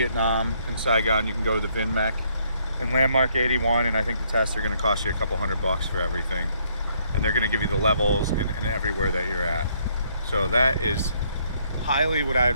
in Saigon, you can go to the VinMec in Landmark 81, and I think the tests are going to cost you a couple $100 for everything. And they're going to give you the levels and everywhere that you're at. So that is highly what I'd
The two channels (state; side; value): inverted; both; correlation -0.69